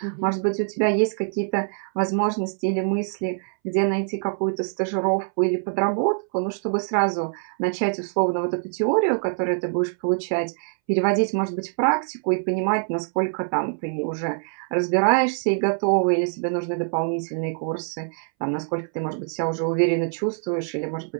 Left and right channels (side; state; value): left; silent; 62 dB below the other